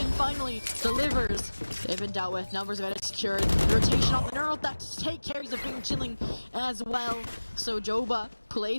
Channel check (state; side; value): inverted; both; correlation -1.00